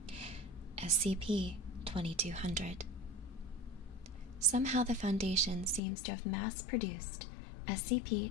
SCP-2200. Somehow the Foundation seems to have mass-produced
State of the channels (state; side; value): drops out; right; at 5.8 s